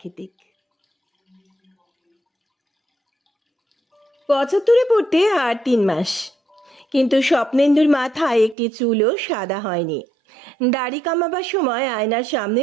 75-এ পড়তে আর 3 মাস, কিন্তু স্বপ্নেন্দুর মাথায় একটি চুলও সাদা হয়নি। দাড়ি কামাবার সময় আয়নার সামনে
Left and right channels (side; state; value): left; drops out; at 8.6 s